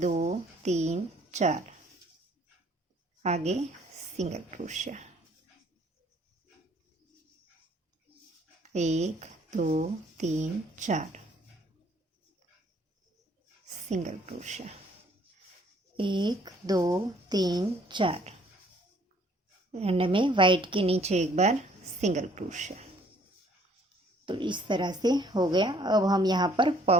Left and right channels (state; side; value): normal; both; correlation 0.60